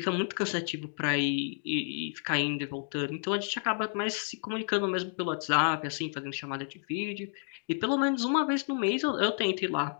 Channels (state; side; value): silent; right; 57 dB below the other